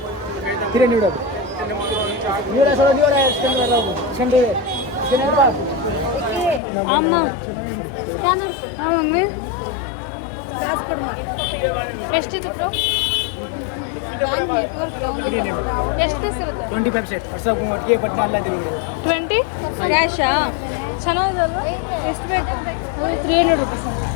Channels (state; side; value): drops out; right; at 6.6 s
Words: ಅಮ್ಮ ಎಷ್ಟಿತ್ತು ಬ್ರೋ? ಎಷ್ಟು ಪೀಸ್ ಇರುತ್ತೆ? 25 ಸೆಟ್ 20 ಕ್ಯಾಶಾ? ಚೆನ್ನಾಗಿದೆಲ್ಲ. ಎಷ್ಟು ಬೇಕು? 300 ರುಪೀಸ್.